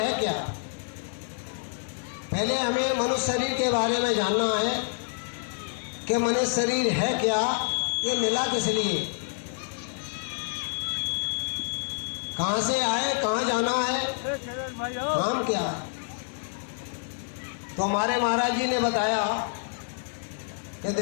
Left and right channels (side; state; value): right; silent; digital silence